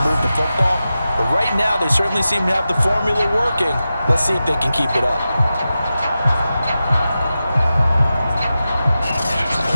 move the football. But right now, they certainly seem to have the formula working. Let's see if they can keep it up.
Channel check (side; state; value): both; inverted; correlation -0.93